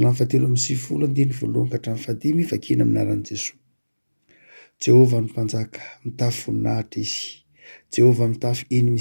fahatelo amby 9 andiny voalohany ka hatramin'ny fahadimy vakina amin'ny anaran'i Jesosy. Jehovah ny mpanjaka mitafy voninahitra izy. Jehovah mitafy eny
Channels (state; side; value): inverted; both; correlation -1.00